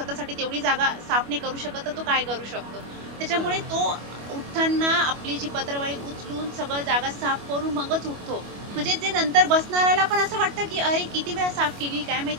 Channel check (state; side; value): late; left; 25 ms